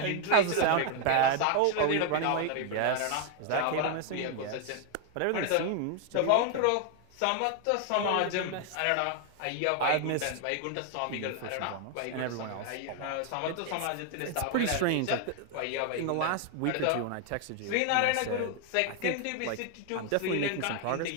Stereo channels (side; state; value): both; different; correlation 0.01